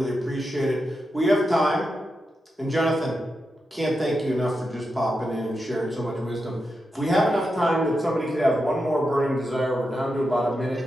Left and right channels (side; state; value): both; normal; correlation 0.88